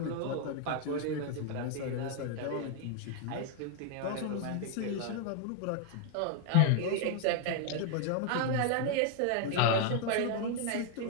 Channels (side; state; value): both; different; correlation 0.00